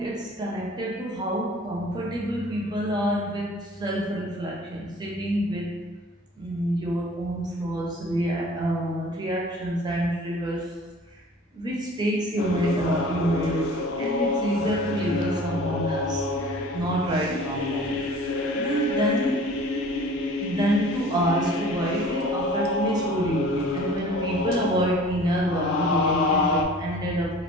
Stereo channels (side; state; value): both; normal; correlation 0.46